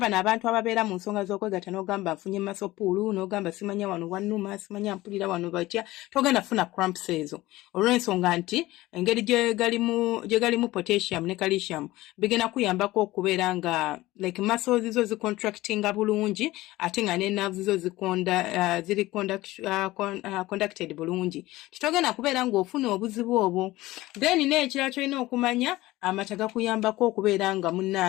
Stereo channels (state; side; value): quieter; right; 18.0 dB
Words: abantu ababeera mu nsonga z'okwegatta n'ogamba nfunye masopuulu n'ogamba simanya wano wannuma simanya mpulira wano batya togenda funa cramps ezo olw'ensonga nti engeri gye galimu potassium ne calcium bigenda kuyambako okubeera nga like muscles zo zicontractinga bulungi ate nga ne nerves zo ziri conducted bulungi titogenda kubeera ng'ofuna obuzibu obwo then n'ekirala kyolina okumanya amata gakuyambako okubeera nga